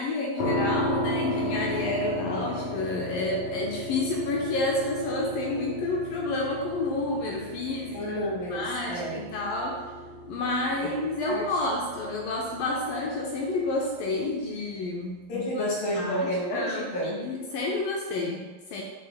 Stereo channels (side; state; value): right; late; 11 ms